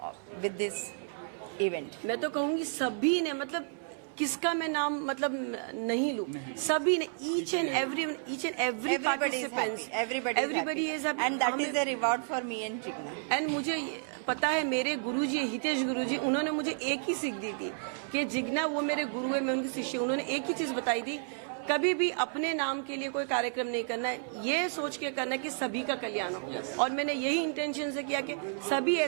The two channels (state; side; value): silent; left; 57 dB below the other